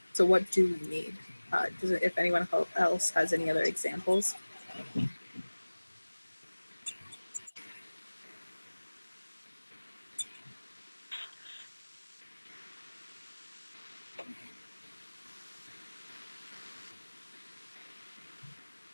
So what do we need? If anyone else has any other examples?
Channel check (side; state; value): both; inverted; correlation -1.00